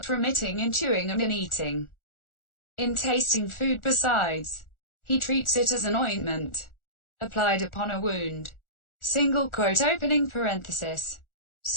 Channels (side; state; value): right; late; 1.4 ms